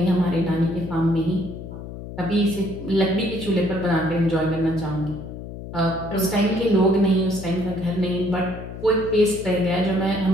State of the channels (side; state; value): left; noise; hum, 11 dB below the sound